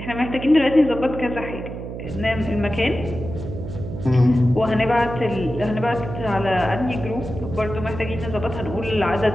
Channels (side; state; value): right; noise; hum, 8 dB below the sound